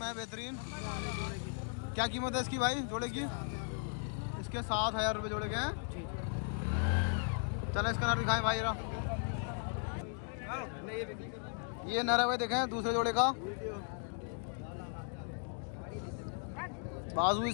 बेहतरीन। वाले जोड़े की क्या कीमत है इसकी भाई जोड़े की? 7,000 इसके 7,000 रुपये जोड़े के हैं। चले इसका नर दिखाएं भाई रा। ये नर है भाई, देखें दूसरे जोड़े का। बाजू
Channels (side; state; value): right; silent; 53 dB below the other